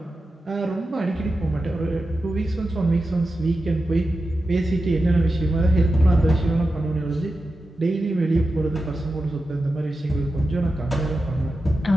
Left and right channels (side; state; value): both; normal; correlation 0.91